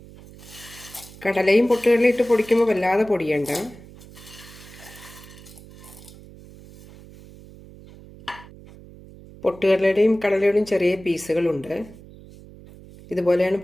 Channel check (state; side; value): noise; right; hum, 20 dB below the sound